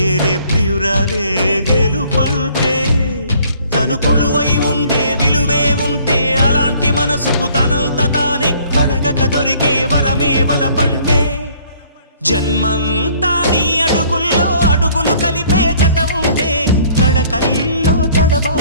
ప్రియురాలే గెలుపంటే తను కొలువై ఉండే విలువే ఉంటే అలాంటి మనసుకు తనంత తానే అడగక దొరికే వరమే వలపంటే జన్మంతా నీ అడుగుల్లో అడుగులు కలిపే జత ఉంటే నడకల్లో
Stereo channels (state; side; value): inverted; both; correlation -0.58